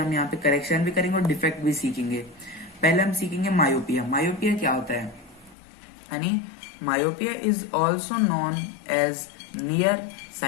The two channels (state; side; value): drops out; right; at 5.6 s